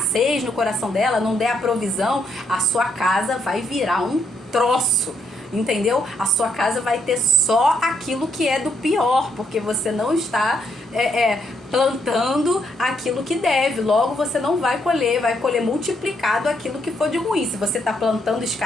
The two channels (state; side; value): normal; both; correlation 0.74